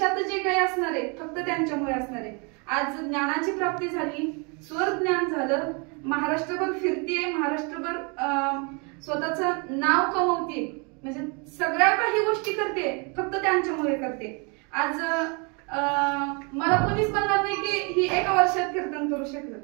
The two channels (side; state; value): left; quieter; 33.2 dB